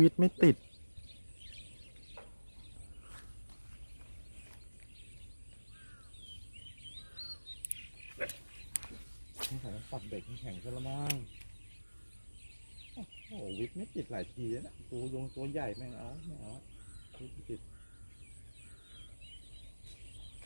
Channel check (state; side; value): inverted; both; correlation -1.00